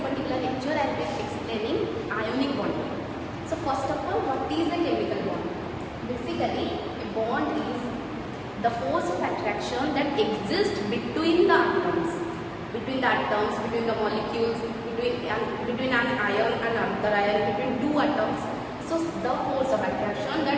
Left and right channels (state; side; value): identical; both; correlation 1.00